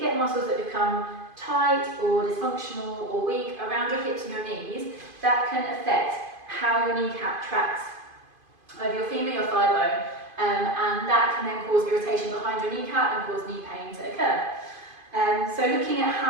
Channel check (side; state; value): left; late; 2.5 ms